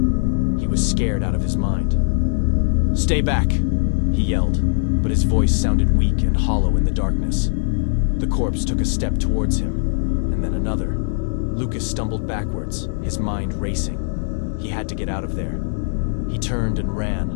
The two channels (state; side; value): silent; right; digital silence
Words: He was scared out of his mind. "Stay back!" he yelled, but his voice sounded weak and hollow in the darkness. The corpse took a step towards him, and then another. Lucas stumbled backwards, his mind racing. He had to get out of there. He turned and